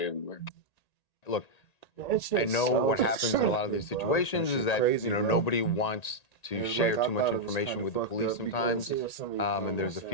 Look, I know what happens in a lot of these situations is that crazy, bro. nobody wants to And share I too much thought it was information kinda with the fucked police up sometimes, because and there's a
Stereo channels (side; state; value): right; late; 1.9 ms